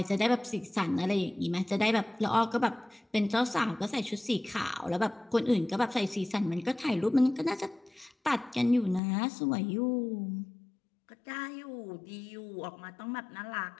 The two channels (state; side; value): drops out; right; at 9.0 s